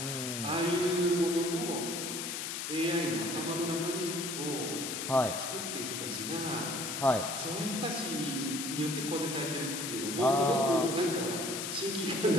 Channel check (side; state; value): left; noise; hiss, 4 dB below the sound